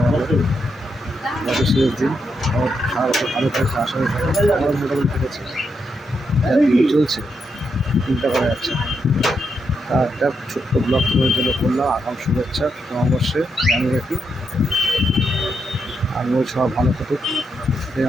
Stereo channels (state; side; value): normal; both; correlation 0.81